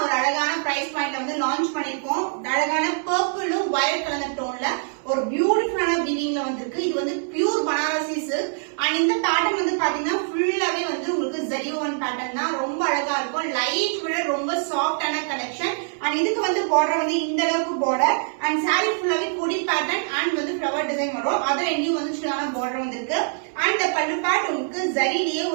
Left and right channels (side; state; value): left; silent; 63 dB below the other